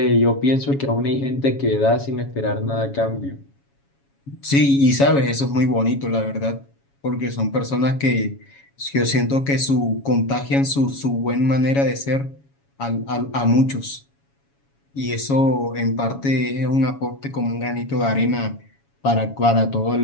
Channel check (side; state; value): right; late; 7.2 ms